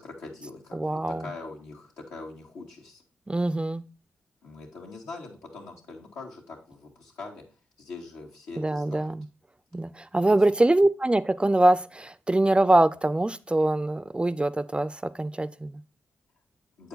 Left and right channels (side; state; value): both; normal; correlation 0.97